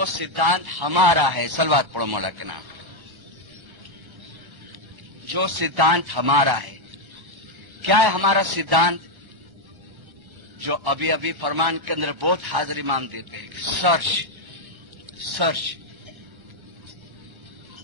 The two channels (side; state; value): left; late; 1.3 ms